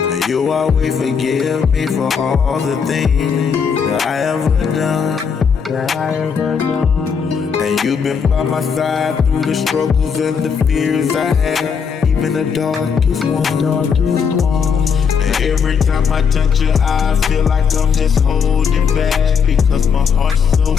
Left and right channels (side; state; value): right; quieter; 6.4 dB